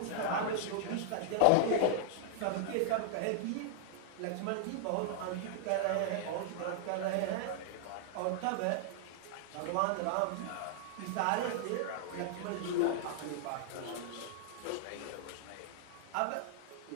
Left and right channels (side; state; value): both; different; correlation -0.01